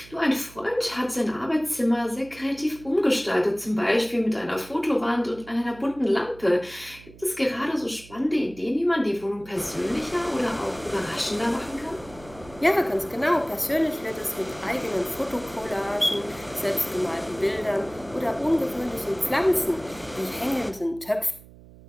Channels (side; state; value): right; noise; hum, 21 dB below the sound